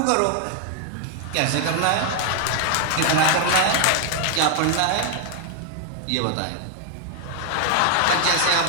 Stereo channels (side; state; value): both; different; correlation 0.00